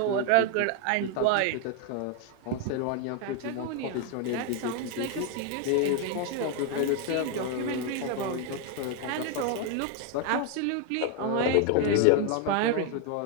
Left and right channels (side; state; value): both; different; correlation 0.01